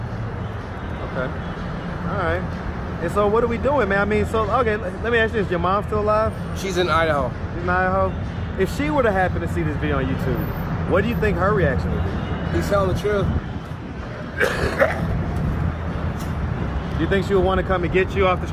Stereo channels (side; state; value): both; identical; correlation 1.00